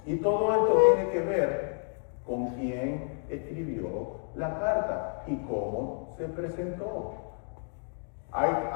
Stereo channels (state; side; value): silent; right; digital silence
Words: Y todo esto tiene que ver con quién escribió la carta y cómo se presentó.